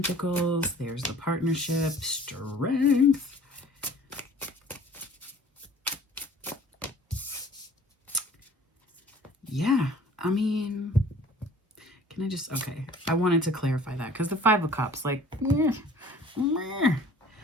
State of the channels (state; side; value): normal; both; correlation 0.49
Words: There's the partnership. Strength. Yeah, I mean... Can I just, okay, I wanted to clarify that because the Five of Cups, like,